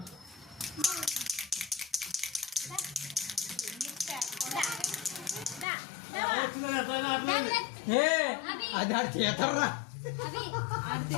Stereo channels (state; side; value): drops out; right; at 5.7 s